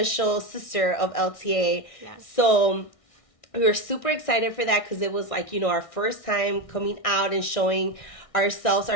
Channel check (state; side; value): late; right; 1.6 ms